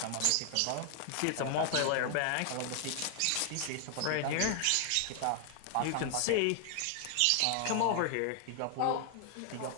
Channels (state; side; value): different; both; correlation 0.00